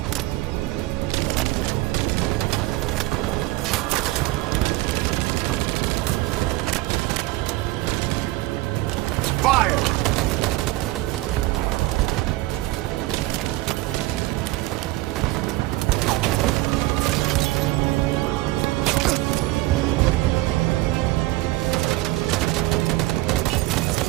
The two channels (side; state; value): left; quieter; 18.9 dB